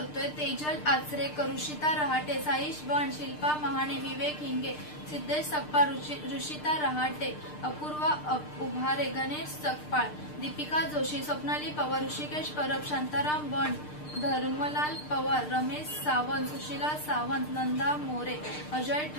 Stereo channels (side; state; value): right; late; 6.6 ms